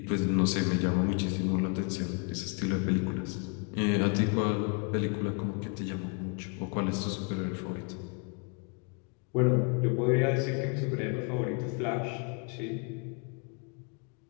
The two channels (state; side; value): quieter; right; 36.2 dB